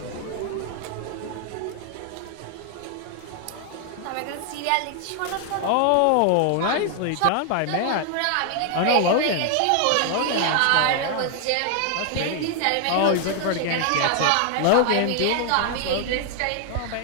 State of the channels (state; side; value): different; both; correlation 0.00